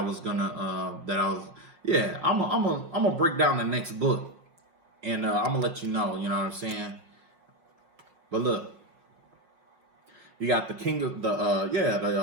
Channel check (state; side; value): late; left; 5.4 ms